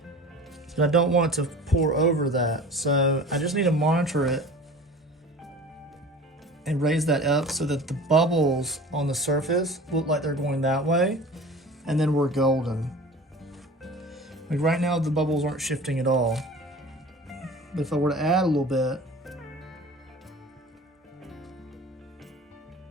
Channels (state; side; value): normal; both; correlation 0.40